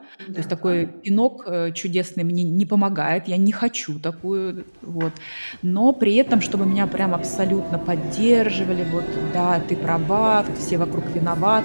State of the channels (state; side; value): inverted; both; correlation -1.00